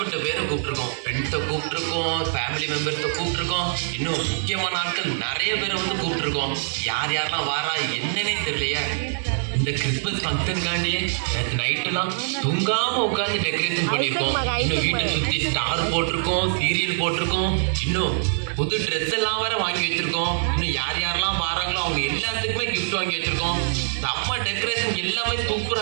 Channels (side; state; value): left; silent; digital silence